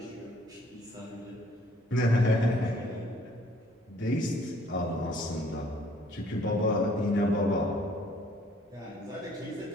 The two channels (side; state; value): both; normal; correlation 0.60